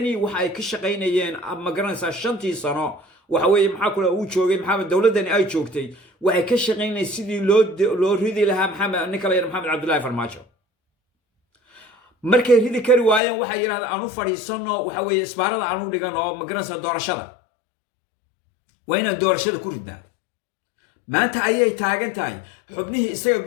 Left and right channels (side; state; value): right; drops out; at 13.2 s